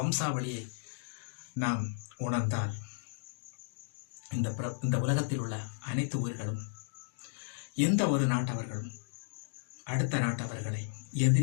நாம் உணர்ந்தால் இந்த உலகத்தில் உள்ள அனைத்து உயிர்களும், எந்த ஒரு நாட்டவர்களும் அடுத்த நாட்டவர்களை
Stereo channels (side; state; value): right; silent; digital silence